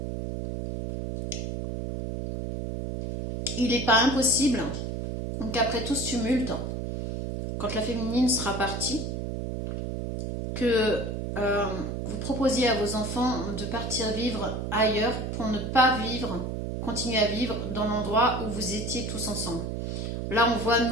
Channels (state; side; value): noise; right; hum, 4 dB below the sound